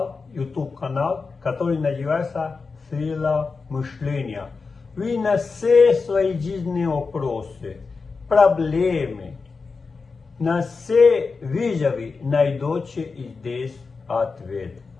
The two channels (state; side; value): quieter; right; 4.5 dB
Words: YouTube канал, который называется «Сила мышления». Вы на все свои жизненные вопросы, проблемы, на все вызовы найдете здесь ответ